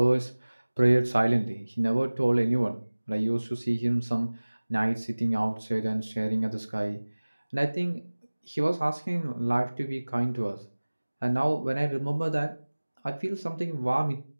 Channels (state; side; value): inverted; both; correlation -1.00